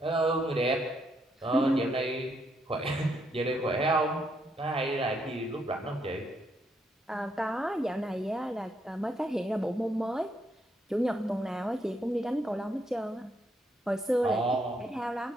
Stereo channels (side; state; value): both; normal; correlation 0.76